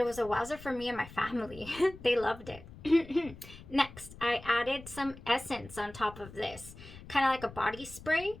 was a wowzer for me and my family. They loved it. Next, I added some essence on top of this, kind of like a body spray.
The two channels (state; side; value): noise; left; rumble, 17 dB below the sound